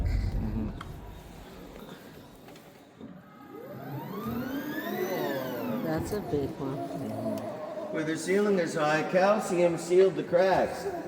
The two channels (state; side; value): identical; both; correlation 1.00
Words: That's a big one. Where the ceiling is high, calcium sealed the cracks.